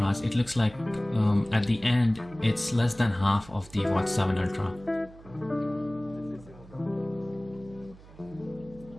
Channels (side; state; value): right; noise; hum, 21 dB below the sound